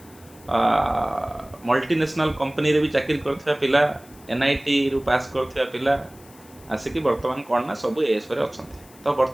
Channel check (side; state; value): left; noise; hiss, 25 dB below the sound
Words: मल्टीनेशनल कंपनी रे भी चाकरी करथिबा पिला एनआईटी रु पास करथिबा पिला आसिकी वर्तमान कौन ना सब एएस रे अछंती तो